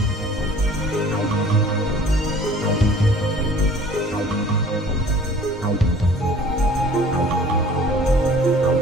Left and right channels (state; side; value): normal; both; correlation 0.50